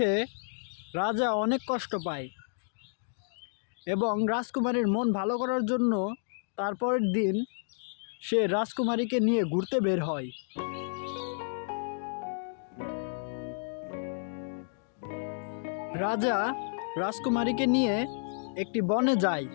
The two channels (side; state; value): right; silent; digital silence